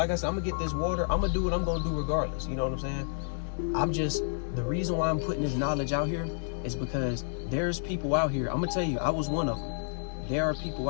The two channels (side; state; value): right; silent; digital silence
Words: I said, I'm gonna get this water. I'm gonna do what I'm gonna do regardless. You know what I'm saying? The reason why I'm putting this knowledge out here is because there's people out here. I'm gonna tell you, I was one of them. There are people